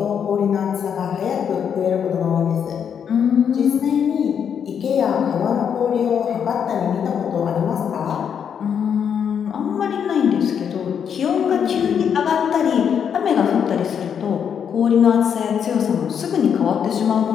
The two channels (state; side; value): quieter; right; 7.8 dB